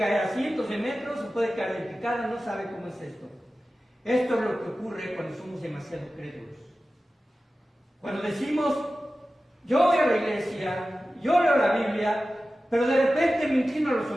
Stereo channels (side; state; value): both; normal; correlation 0.95